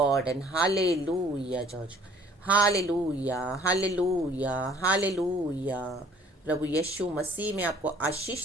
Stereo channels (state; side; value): normal; both; correlation 0.56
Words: and hallelujah, church. Hallelujah, hallelujah, hallelujah. प्रभु यीशु मसीह में आपको आशीष